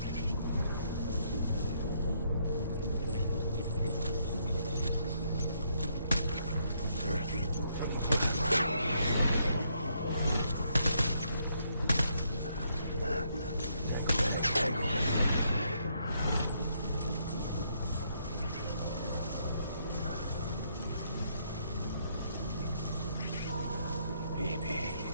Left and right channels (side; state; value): both; inverted; correlation -0.73